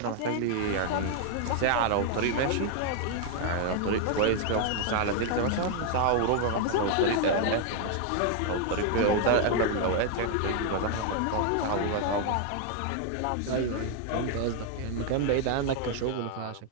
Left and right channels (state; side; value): different; both; correlation 0.00